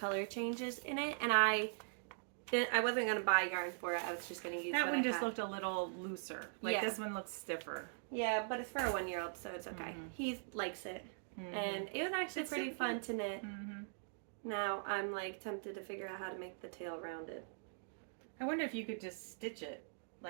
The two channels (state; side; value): silent; left; digital silence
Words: changes in it. And I wasn't going to buy yarn for it. I was just going to use That what one I just had. looked a little looser. Like this one looks stiffer. Yeah, but it's for a 1-year-old, so it's okay. He likes it. And it was actually It's pretty so fun to knit. Mm-hmm. Now I'm like tempted to figure out how to make the tail rounded. I wonder if you could just stitch it